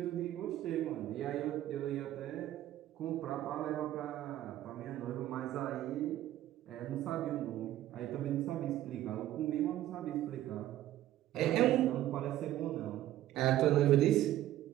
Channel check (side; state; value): left; quieter; 13.6 dB